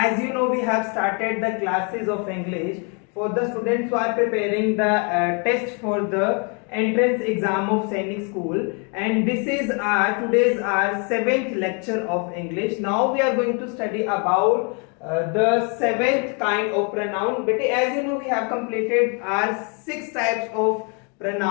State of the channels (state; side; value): quieter; right; 36.2 dB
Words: you know, we have started the classes of English for the students who are preparing the test for the entrance exam of Sainik School, and this is today's our 7th lecture of English. Now we are going to study about the 7th kind of pronoun. But as you know, we have completed our 6 types of